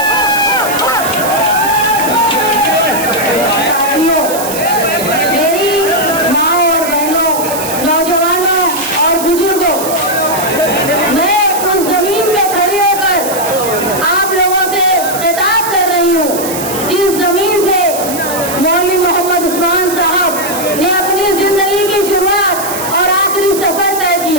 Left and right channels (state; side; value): noise; right; hiss, 8 dB below the sound